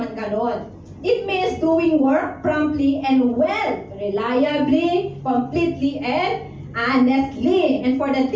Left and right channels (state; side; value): identical; both; correlation 1.00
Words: ganon. It means doing work promptly and well, reliably, completely, and honestly. And for the